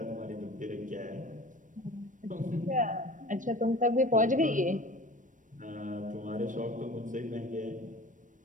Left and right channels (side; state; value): left; late; 0.37 ms